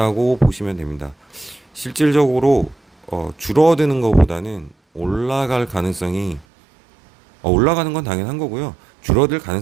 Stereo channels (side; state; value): left; drops out; at 6.5 s